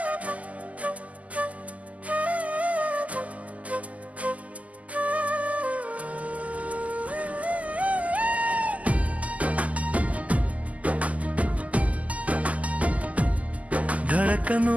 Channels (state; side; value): late; left; 0.072 ms